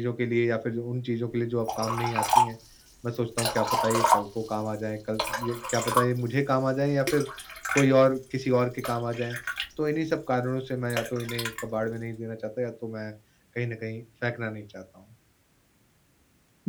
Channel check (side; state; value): both; identical; correlation 1.00